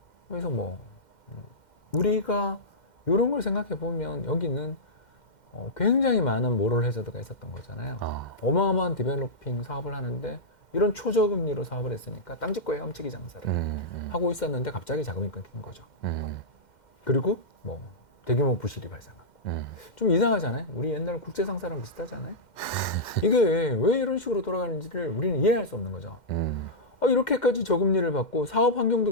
그래서 뭐 우리가 이런 걸 생각해 보면 여기는 굉장히 많은 모럴 해저드가 있었던 거잖아요. 어마어마한 디벨로핑 사업을 하는데 이런 초저금리로 사업을 했으니까 땅짓고 헤엄치기 장사를 하고 있었는데 갑자기 자금이 끊긴 거죠. 그리고 뭐 대규모 부실이 발생하고. 좀 이상하잖아요. 우리 옛날 국제상사랑 비슷하잖아요. 이게 왜 이런 식으로 돌아가는지를 우리는 이해할 수 없는 거죠. 이렇게까지 저금리를 받고 사업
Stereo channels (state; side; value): late; right; 2.1 ms